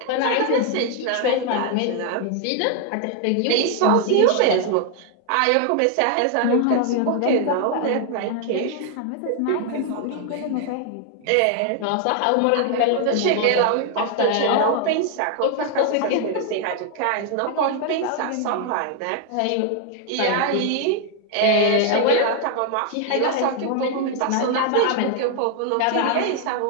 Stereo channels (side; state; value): both; different; correlation 0.00